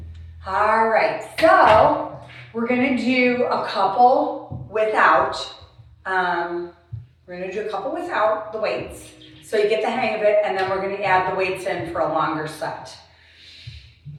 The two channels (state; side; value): identical; both; correlation 1.00